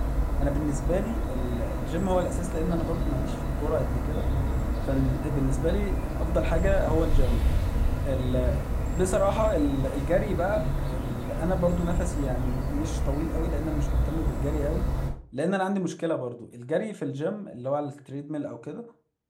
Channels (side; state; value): both; identical; correlation 1.00